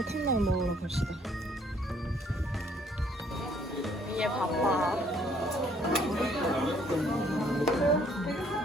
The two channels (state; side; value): normal; both; correlation 0.63